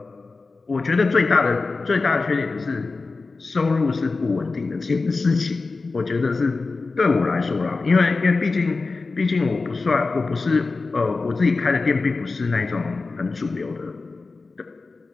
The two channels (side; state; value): right; quieter; 3.9 dB